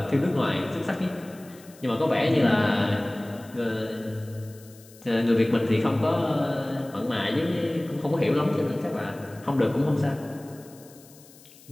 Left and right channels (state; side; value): noise; left; hiss, 23 dB below the sound